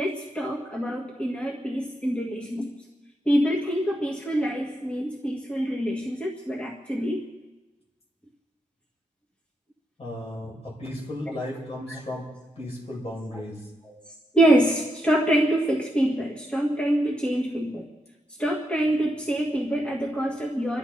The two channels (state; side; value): normal; both; correlation 0.83